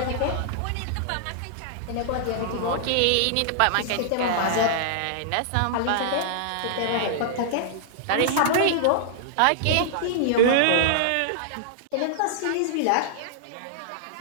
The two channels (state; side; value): different; both; correlation -0.01